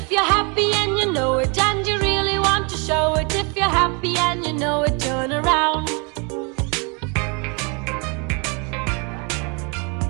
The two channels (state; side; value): quieter; left; 32.8 dB